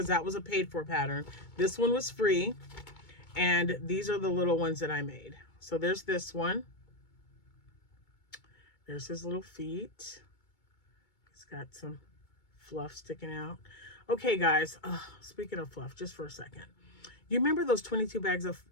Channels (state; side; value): late; right; 2.2 ms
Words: that was a paid for pattern. This one was free. And these are the little ones that I made. So there's this one. There's his little feet. He's got some fluff sticking out. Okay, guys. Speaking of fluff, just for a second. You remember those 22 bags of